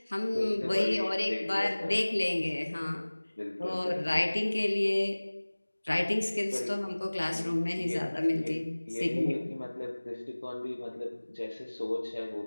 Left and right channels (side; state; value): both; inverted; correlation -1.00